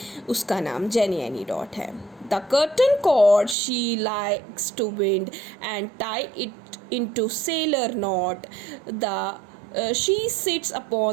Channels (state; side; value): drops out; left; at 3.6 s